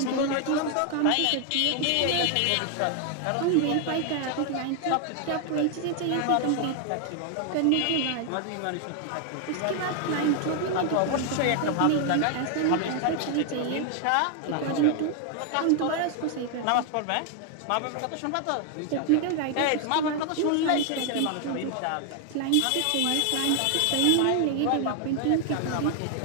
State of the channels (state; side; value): different; both; correlation 0.00